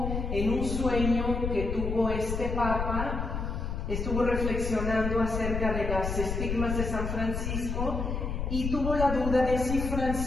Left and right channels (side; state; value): left; noise; rumble, 3 dB below the sound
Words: en un sueño que tuvo este Papa, estuvo reflexionando acerca de las estigmas de San Francisco y tuvo la duda de si